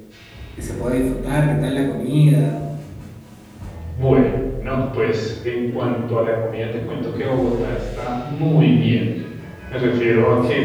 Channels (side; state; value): both; identical; correlation 1.00